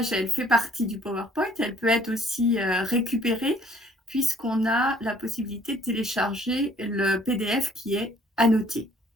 elle fait partie du PowerPoint. Elle peut être aussi récupérée puisqu'on a la possibilité de télécharger le PDF qui est annoté.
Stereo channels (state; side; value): normal; both; correlation 0.60